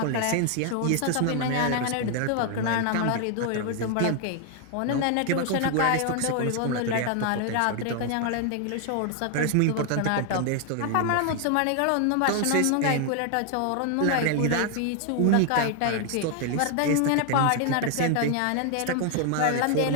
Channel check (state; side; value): different; both; correlation 0.01